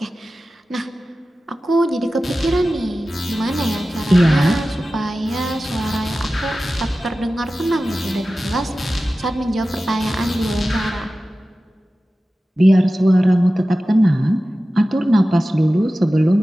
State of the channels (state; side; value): normal; both; correlation 0.95